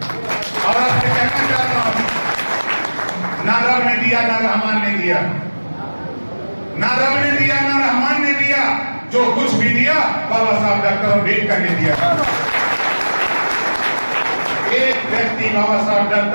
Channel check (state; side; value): inverted; both; correlation -1.00